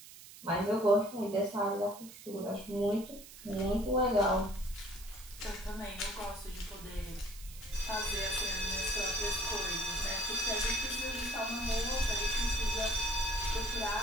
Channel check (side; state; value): right; noise; hiss, 17 dB below the sound